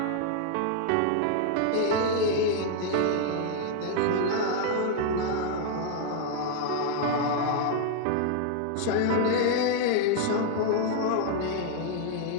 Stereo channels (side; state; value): both; different; correlation 0.00